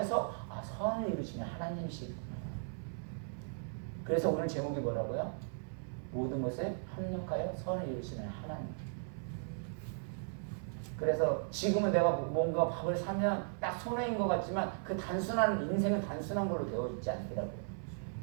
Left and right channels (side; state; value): left; silent; 53 dB below the other